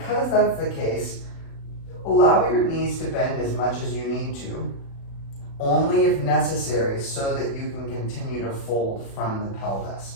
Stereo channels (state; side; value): late; right; 36 ms